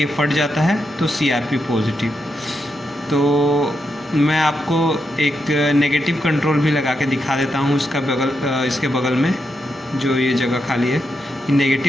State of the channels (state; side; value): normal; both; correlation 0.84